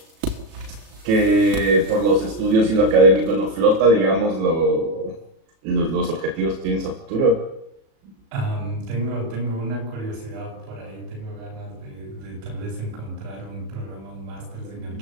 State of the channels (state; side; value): late; left; 36 ms